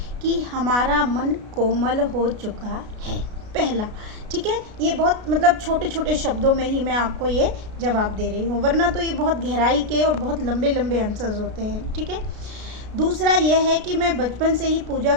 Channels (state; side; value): late; left; 33 ms